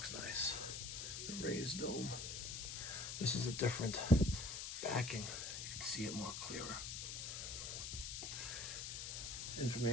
nice. The raised dome. This is a different backing. You can see it more clearer.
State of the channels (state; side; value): noise; left; hiss, 4 dB below the sound